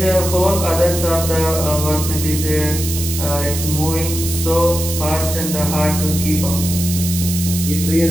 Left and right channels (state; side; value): noise; right; hiss, 5 dB below the sound